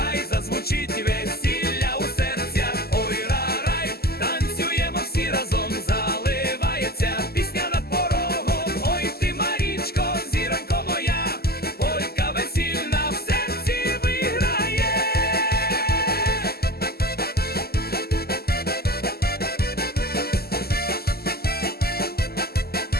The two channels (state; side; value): late; right; 0.46 ms